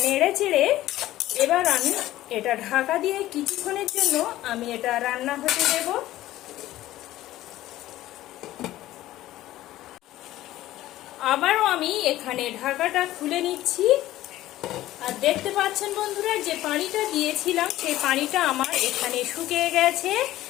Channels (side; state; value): right; quieter; 15.1 dB